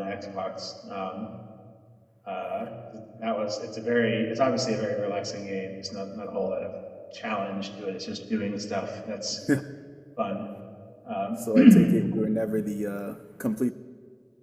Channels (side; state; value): both; identical; correlation 1.00